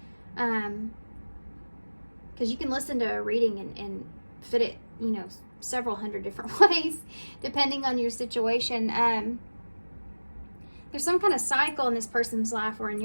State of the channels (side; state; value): both; inverted; correlation -1.00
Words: Because you can listen to a reading and fit it, you know, several hundred different ways, depending on your situation. There's some kind of cycle in this person's life or in